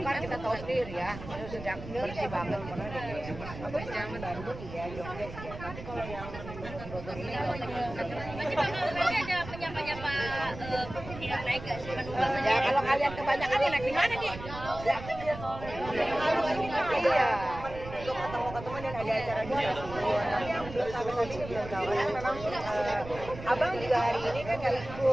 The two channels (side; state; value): right; noise; rumble, 12 dB below the sound